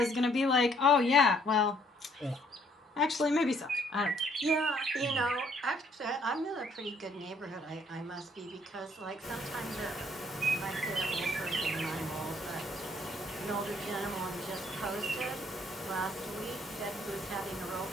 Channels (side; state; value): both; normal; correlation 0.65